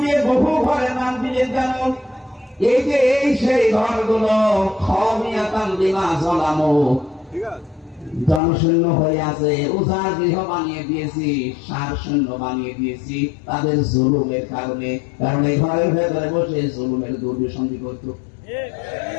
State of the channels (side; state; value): right; drops out; at 8.4 s